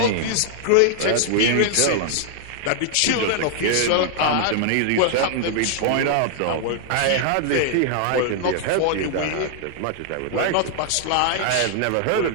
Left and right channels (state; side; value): different; both; correlation 0.00